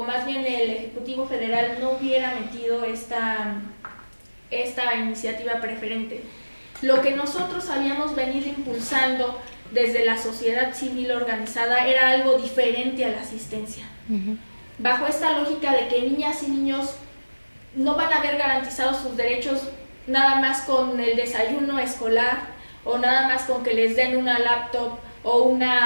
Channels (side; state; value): both; inverted; correlation -1.00